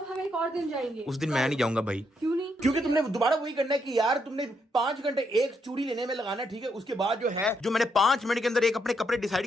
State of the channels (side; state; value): both; normal; correlation 0.77